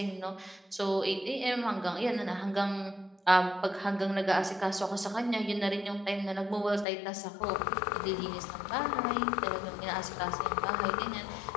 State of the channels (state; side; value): drops out; right; at 6.9 s